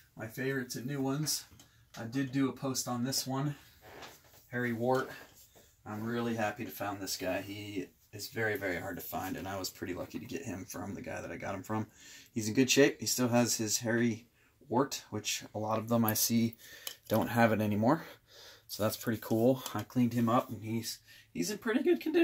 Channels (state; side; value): identical; both; correlation 1.00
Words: my favorites and new ones. I did do a post on this one, Harry Wart. I'm really happy to found this guy. He is very, very hard to find, and I was pretty lucky to get him from the guy that I got him from. He's in good shape. He still has his Harry Wart, which a lot of them I see don't have it anymore. So that's pretty cool. I cleaned him up, and he's in pretty good